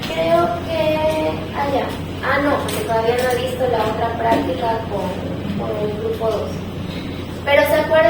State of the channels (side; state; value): both; identical; correlation 1.00